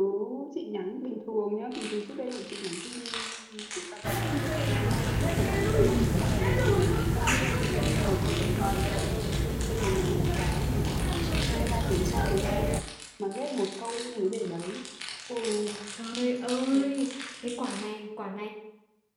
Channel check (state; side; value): identical; both; correlation 1.00